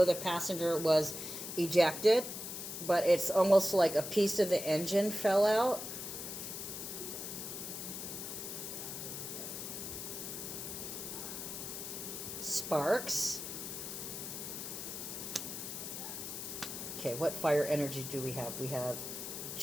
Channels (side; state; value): left; noise; hiss, 7 dB below the sound